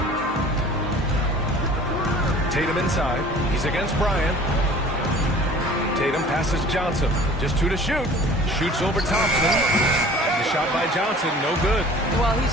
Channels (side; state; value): both; normal; correlation 0.47